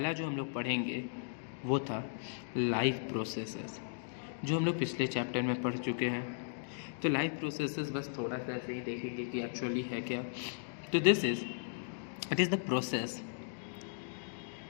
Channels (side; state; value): right; silent; digital silence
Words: जो हम लोग पढ़ेंगे वो था लाइफ प्रोसेसेस, जो हम लोग पिछले चैप्टर में पढ़ चुके हैं. तो लाइफ प्रोसेसेस बस थोड़ा सा ऐसे ही देखेंगे कि एक्चुअली है क्या. तो it is